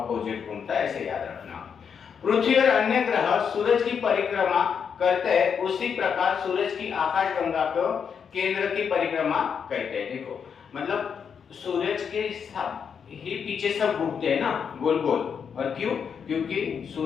घूमता है, ऐसे याद रखना। पृथ्वी और अन्य ग्रह सूरज की परिक्रमा करते हैं, उसी प्रकार सूरज की आकाशगंगा को केंद्र की परिक्रमा करते हैं। देखो मतलब सूरज के ही पीछे सब घूमते हैं ना गोल गोल, और क्यों, क्योंकि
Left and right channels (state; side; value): quieter; right; 6.9 dB